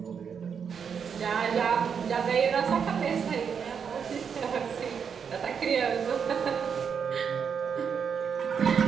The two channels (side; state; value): left; quieter; 6.9 dB